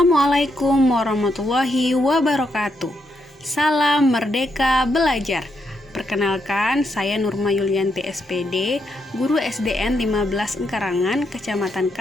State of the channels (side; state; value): both; normal; correlation 0.80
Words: warahmatullahi wabarakatuh. Salam Merdeka Belajar. Perkenalkan, saya Nurma Yulianti SPD, Guru SDN 15 Engkarangan, Kecamatan